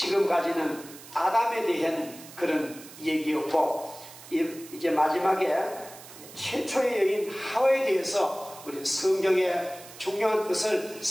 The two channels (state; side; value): noise; right; hiss, 17 dB below the sound